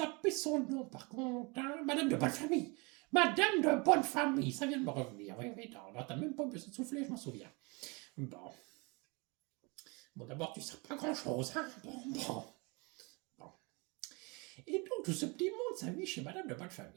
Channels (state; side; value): quieter; left; 28.9 dB